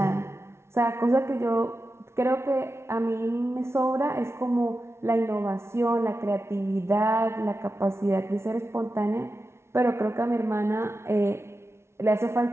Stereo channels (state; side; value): late; left; 0.13 ms